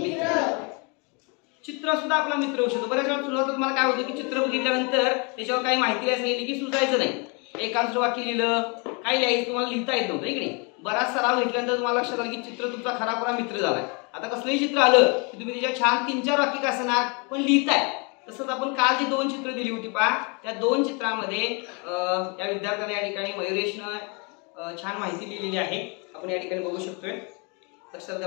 चित्र सुद्धा आपला मित्र होऊ शकतो. बऱ्याच वेळा सुरुवातीला मला काय होतं की चित्र बघितल्यानंतर त्याच्यावर काही माहिती सांगितली की सुचायचं नाही. एकांतर वाक्य लिहिलं, काय लिहायचं तुम्हाला लिहिता येत नव्हतं की नाही. बराच सराव घेतल्यानंतर तुम्हाला लक्षात आलं की चित्र तुमचा खरा मित्र झालाय. आता कसलंही चित्र आलं की तुम्ही त्याच्या छान 3-4 वाक्य का असणार पण लिहिताय. तसंच आपण काल जी 2 चित्र दिली होती पहा, त्या 2 चित्रामध्ये या विद्यार्थ्याने या ठिकाणी मयुरेशनं छान माहिती लिहिलेली आहे. आपण या ठिकाणी बघू शकतोय. लक्षात घ्या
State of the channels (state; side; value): quieter; right; 32.6 dB